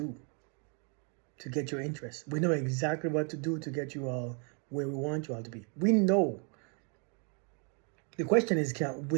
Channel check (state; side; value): quieter; left; 37.7 dB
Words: to get your interest. We know exactly what to do to get you all where we want you all to be. We know. The question is,